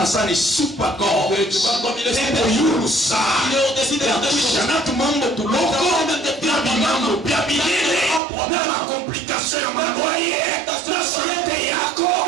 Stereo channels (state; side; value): drops out; left; at 8.2 s